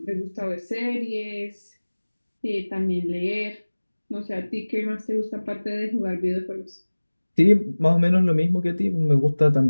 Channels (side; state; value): both; inverted; correlation -1.00